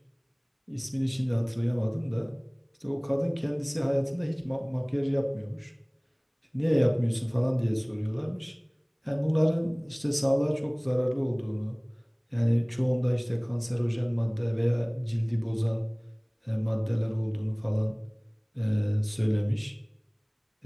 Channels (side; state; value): both; identical; correlation 1.00